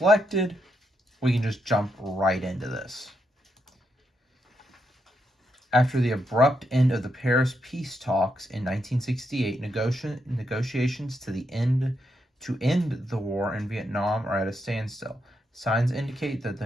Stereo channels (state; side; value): normal; both; correlation 0.81